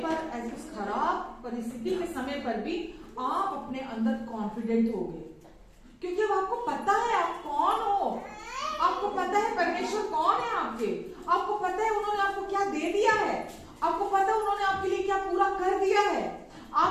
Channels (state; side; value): identical; both; correlation 1.00